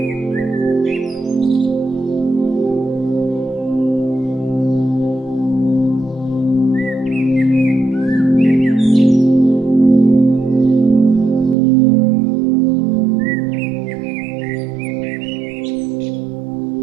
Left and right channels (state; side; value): drops out; left; at 11.6 s